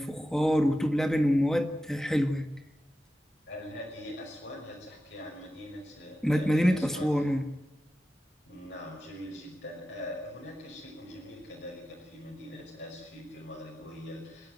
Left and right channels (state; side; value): normal; both; correlation 0.92